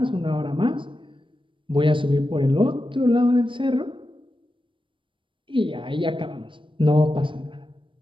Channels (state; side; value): late; left; 0.25 ms